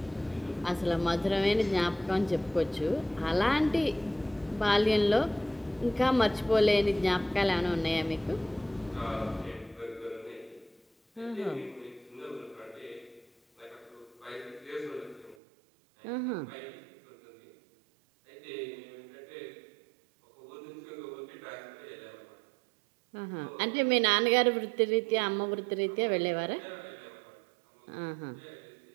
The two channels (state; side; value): drops out; left; at 15.4 s